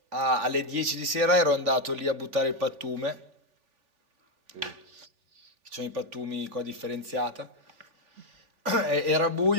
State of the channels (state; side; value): late; left; 3.4 ms